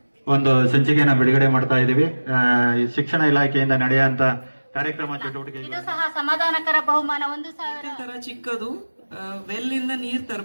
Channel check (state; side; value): inverted; both; correlation -1.00